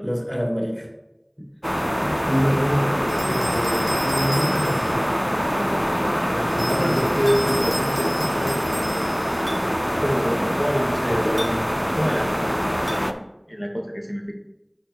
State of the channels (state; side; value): identical; both; correlation 1.00